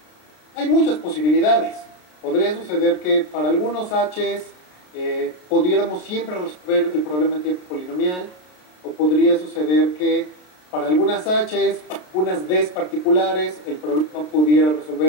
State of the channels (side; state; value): right; late; 33 ms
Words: Hay muchas posibilidades. Podría suceder que para algunos H's pudiéramos siempre resolver el problema en tiempo polinomial, o podría suceder que para algunas H's, unas D's particulares, el problema pudiera